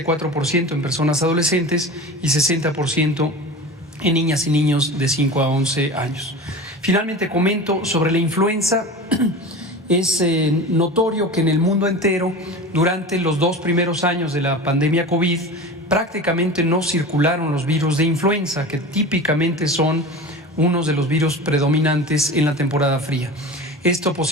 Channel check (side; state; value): both; normal; correlation 0.32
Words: en personas adolescentes y 60% en niñas y niños de 5 a 11 años. Finalmente comento sobre la influenza. Es notorio que en el mundo entero, durante los 2 primeros años de la pandemia COVID, prácticamente no circularon los virus de influenza, que típicamente son unos de los virus predominantes en la temporada fría. Esto